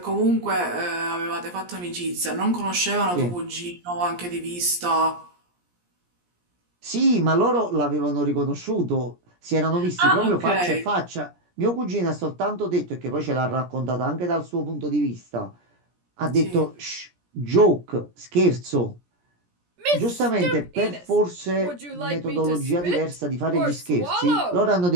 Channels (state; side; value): late; left; 17 ms